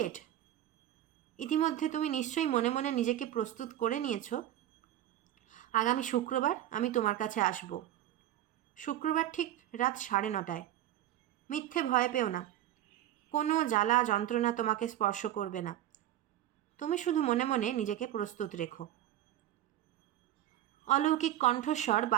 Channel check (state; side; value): quieter; left; 12.9 dB